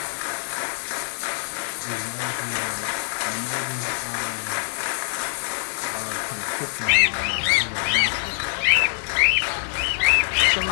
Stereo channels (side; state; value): right; silent; digital silence